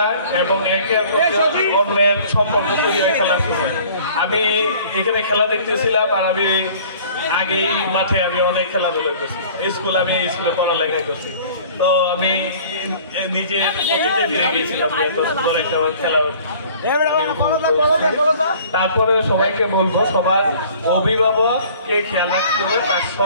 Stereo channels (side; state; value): both; inverted; correlation -0.50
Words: এবং একে অন্যের সম্পর্ক তৈরি হয়ে খেলা শুনে আমি এখানে খেলা দেখতেছিলাম আর আমি আগেই মাঠে আমি অনেক খেলাধুলা করছি আমি স্কুলে পড়ালেখা করছি তো আমি নিজে অতীতে ফিরে গিয়েছিলাম এত সুন্দর একটা খেলা তারপরে সবাইকে বলবো সবার অভিভাবককে খেয়াল রাখতে হবে তার